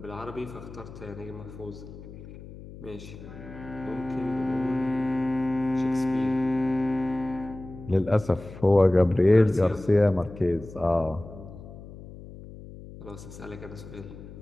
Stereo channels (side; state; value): left; noise; hum, 15 dB below the sound